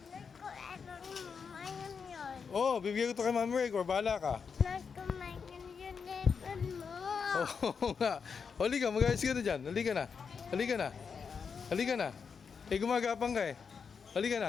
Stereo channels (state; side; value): quieter; right; 6.0 dB